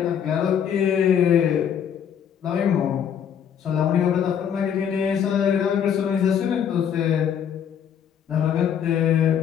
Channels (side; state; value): right; quieter; 8.5 dB